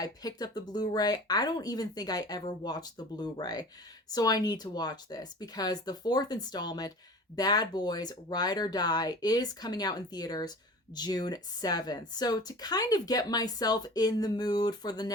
picked up the Blu-ray. I don't even think I ever watched the Blu-ray. So I need to watch this because the fourth installment, Bad Boys Ride or Die, is coming out in theaters June 7th. So to kind of get myself in the mood for the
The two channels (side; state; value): both; normal; correlation 0.40